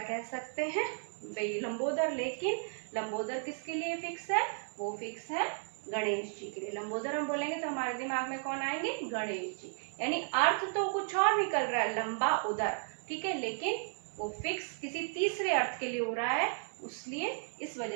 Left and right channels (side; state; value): left; silent; 55 dB below the other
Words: कह सकते हैं, वही लंबोदर। लेकिन लंबोदर किसके लिए फिक्स है, वो फिक्स है गणेश जी के लिए। लंबोदर हम बोलेंगे तो हमारे दिमाग में कौन आएंगे, गणेश जी, यानी अर्थ तो कुछ और निकल रहा है, लंबा उदर, ठीक है, लेकिन वो फिक्स किसी तीसरे अर्थ के लिए हो रहा है, इसलिए इस